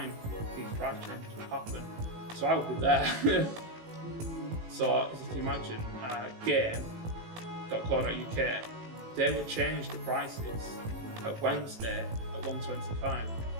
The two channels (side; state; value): left; late; 18 ms